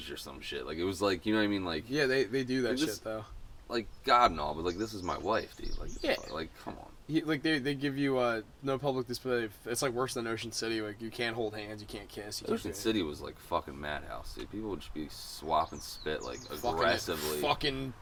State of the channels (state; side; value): identical; both; correlation 1.00